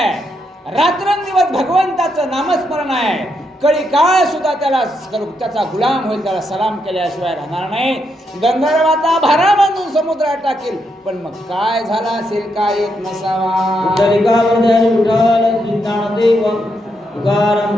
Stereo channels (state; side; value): normal; both; correlation 0.80